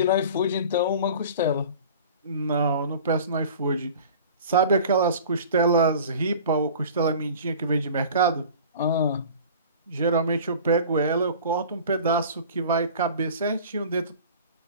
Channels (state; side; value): inverted; both; correlation -0.42